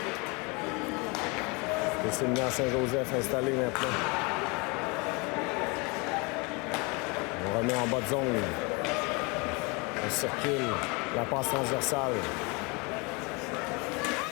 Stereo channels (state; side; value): quieter; right; 28.9 dB